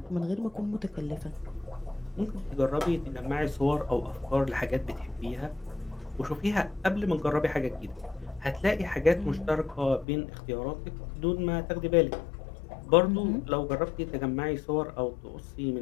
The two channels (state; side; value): drops out; right; at 10.1 s